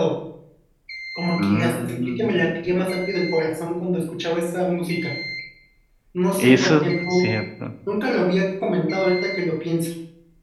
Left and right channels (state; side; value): identical; both; correlation 1.00